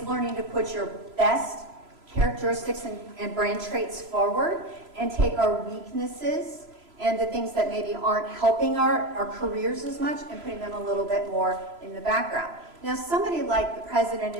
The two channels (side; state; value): left; late; 3.0 ms